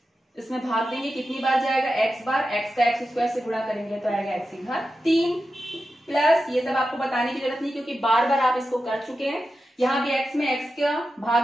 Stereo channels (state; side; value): normal; both; correlation 0.91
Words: इसमें भाग देंगे, कितनी बार जाएगा x बार, x का x स्क्वायर से गुणा करेंगे तो आएगा x की घात 3 प्लस, ये सब आपको बताने की जरूरत नहीं क्योंकि बार बार आप इसको कर चुके हैं। यहाँ भी x में x का